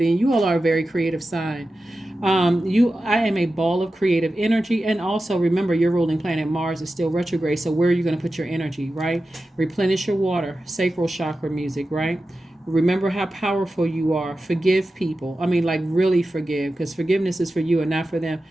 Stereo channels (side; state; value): both; normal; correlation 0.93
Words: and you all are a very creative sign. I am a ball of creative energy, and also remember your ruling planet Mars is still retrograde. So where are you going to put your energy, right? Replenish your water, sacral chakra music, right? Remember how powerful you are. Forgive people. I mean, like really forgive, because forgiveness is for you and not for them.